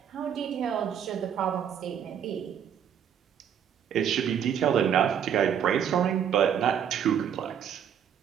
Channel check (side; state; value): left; quieter; 8.7 dB